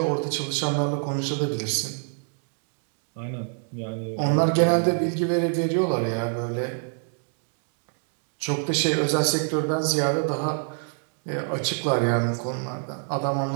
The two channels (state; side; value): silent; left; 60 dB below the other